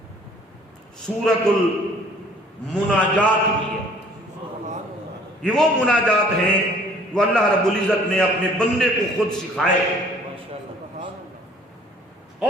سورۃ المناجات بھی ہے۔ یہ وہ مناجات ہیں جو اللہ رب العزت نے اپنے بندے کو خود سکھائے،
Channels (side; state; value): both; normal; correlation 0.54